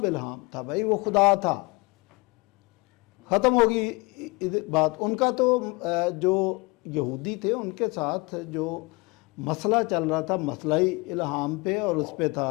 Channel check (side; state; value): right; quieter; 26.3 dB